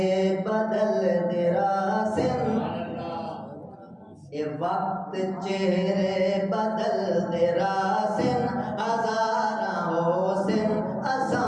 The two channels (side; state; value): both; identical; correlation 1.00